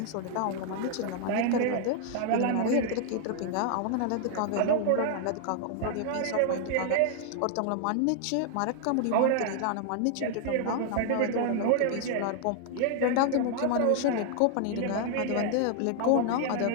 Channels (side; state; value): both; different; correlation 0.00